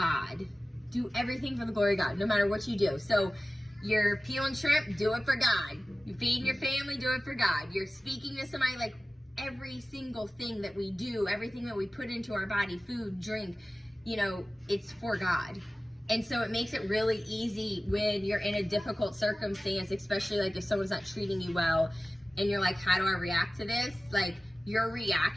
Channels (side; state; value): both; normal; correlation 0.96